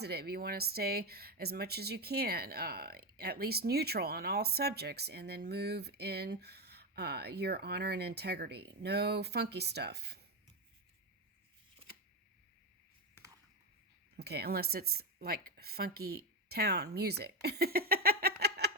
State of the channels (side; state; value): both; normal; correlation 0.12